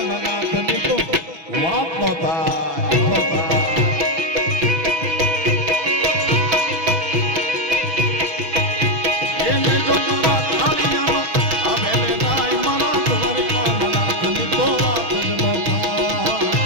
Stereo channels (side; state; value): left; late; 6.1 ms